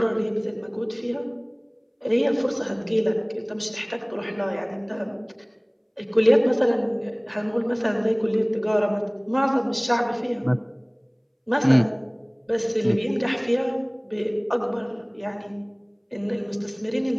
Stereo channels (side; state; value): both; identical; correlation 1.00